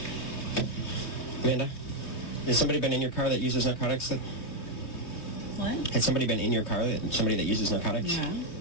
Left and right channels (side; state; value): right; late; 3.1 ms